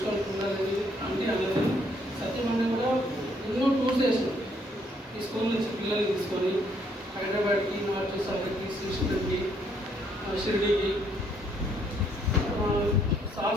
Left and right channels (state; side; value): normal; both; correlation 0.69